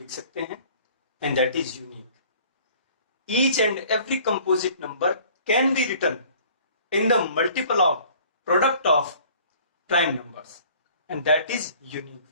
सकते हैं, and that is unique. Each and every composite number can be written in the multiple of product of prime numbers, and that is unique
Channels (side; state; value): both; inverted; correlation -0.52